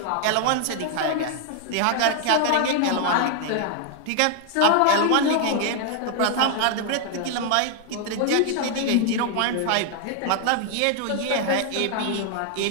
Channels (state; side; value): different; both; correlation 0.00